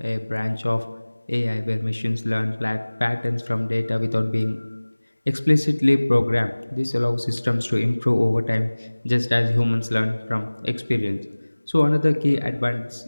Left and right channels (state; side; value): inverted; both; correlation -1.00